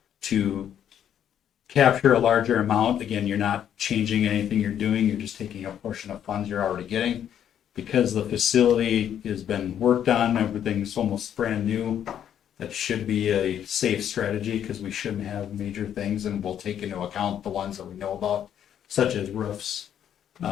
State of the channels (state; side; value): quieter; right; 9.7 dB